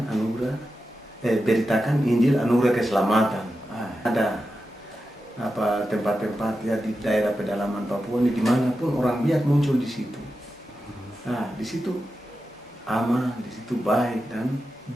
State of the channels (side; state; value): both; normal; correlation 0.90